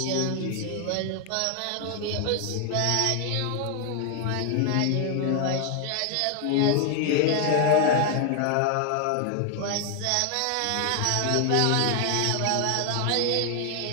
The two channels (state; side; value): different; both; correlation 0.00